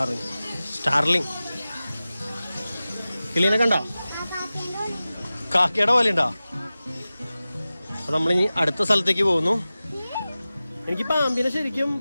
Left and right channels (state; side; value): inverted; both; correlation -0.96